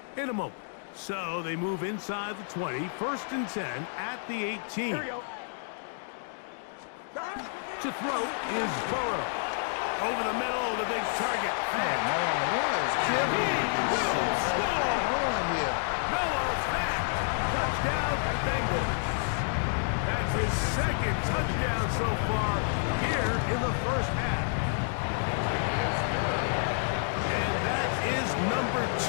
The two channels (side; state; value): right; silent; digital silence